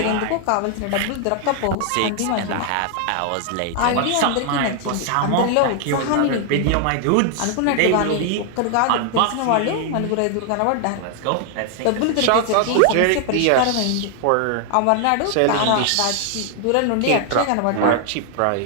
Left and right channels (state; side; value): different; both; correlation 0.00